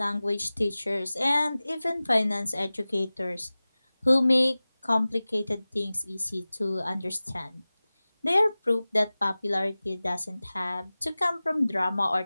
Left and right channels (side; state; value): both; inverted; correlation -0.98